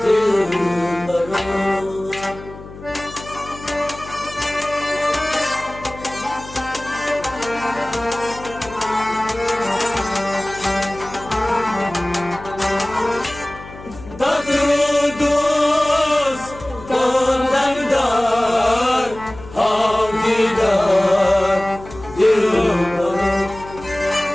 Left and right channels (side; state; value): left; noise; hum, 16 dB below the sound